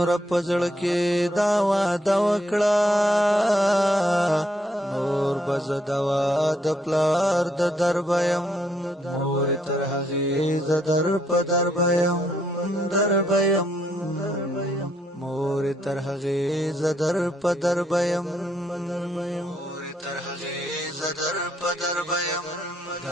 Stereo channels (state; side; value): normal; both; correlation 0.73